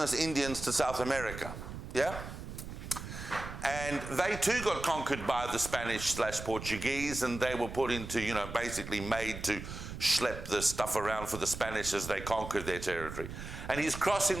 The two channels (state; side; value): noise; right; rumble, 9 dB below the sound